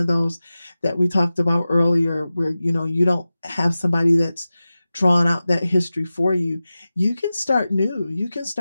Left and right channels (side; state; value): both; inverted; correlation -0.95